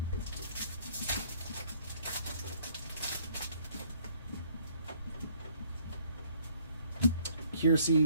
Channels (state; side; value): inverted; both; correlation -0.62